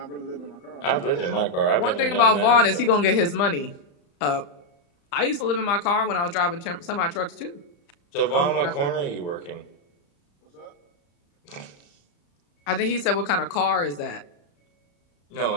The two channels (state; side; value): late; right; 35 ms